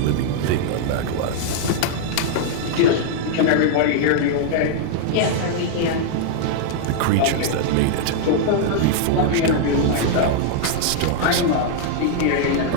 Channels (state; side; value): different; both; correlation -0.01